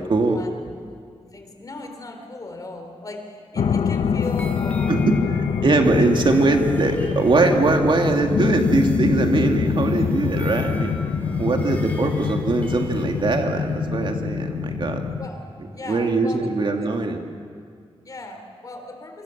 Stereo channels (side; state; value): both; normal; correlation 0.71